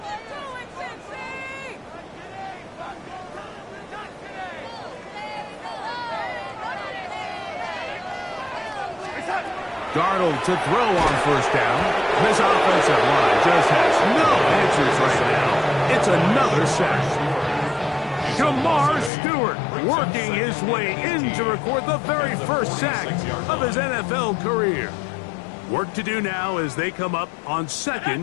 Darnold to throw on 1st down. This offensive line just has no answers right now. It's another sack. Jamar Stewart working his way in to record the very first sack of his NFL career. Work to do now as they come up on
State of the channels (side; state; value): right; drops out; at 19.1 s